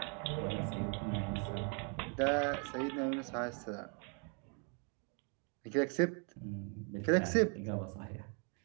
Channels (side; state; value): left; quieter; 37.4 dB